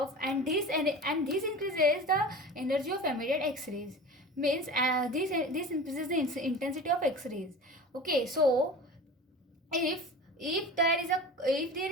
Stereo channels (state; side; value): normal; both; correlation 0.35